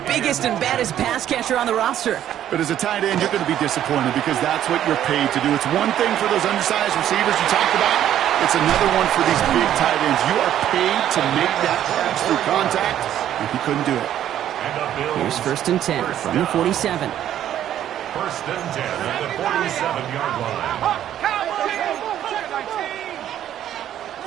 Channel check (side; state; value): left; quieter; 11.2 dB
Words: biggest and baddest pass catcher on the roster. But as a tight end, you're going to be disappointed because that's what you're paid to do. It's one thing for those undersized receivers you talked about. It's another one for these big tight ends. You are paid to make that catch through contact, and he couldn't do it. Here's first and 10 from the 47. First and 10 at the 47-yard line.